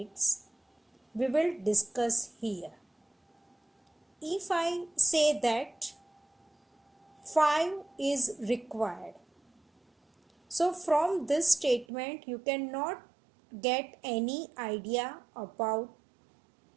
We will discuss here. If I say that 5 is required, so from this statement you cannot get any idea about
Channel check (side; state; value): left; drops out; at 11.9 s